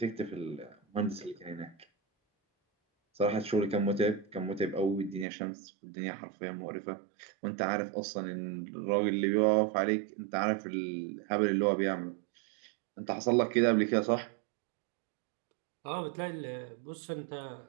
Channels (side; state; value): left; drops out; at 5.2 s